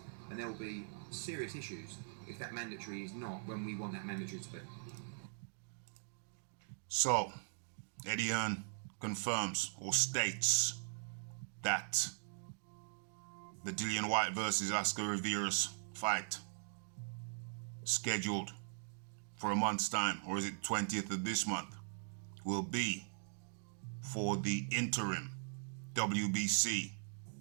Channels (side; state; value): left; silent; digital silence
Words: And there will be serious issues if that mandatory is not when we want that mandatory to be. So, Eddie Hearn confirms or states that the Dillian Whyte versus Oscar Rivas fight scheduled for a month's time, or is it 20th of this month, will be for the interim WBC